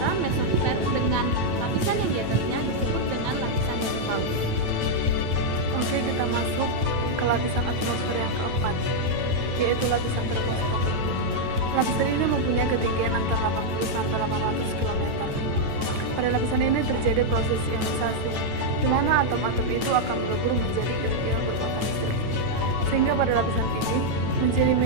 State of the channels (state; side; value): late; left; 9.1 ms